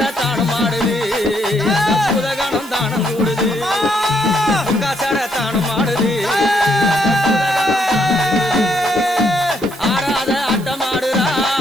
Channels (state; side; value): noise; right; hiss, 20 dB below the sound